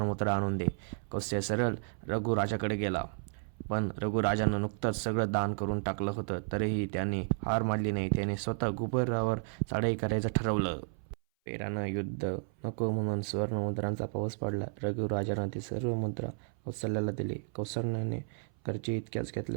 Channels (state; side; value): silent; left; 56 dB below the other